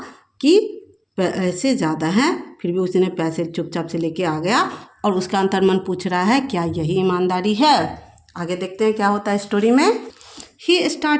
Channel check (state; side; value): identical; both; correlation 1.00